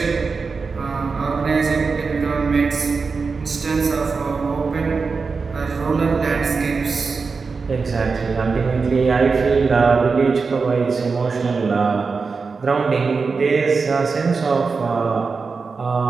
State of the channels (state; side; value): quieter; left; 4.7 dB